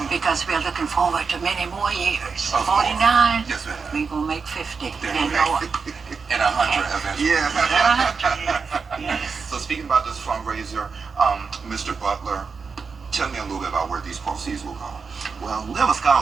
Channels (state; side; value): quieter; left; 5.2 dB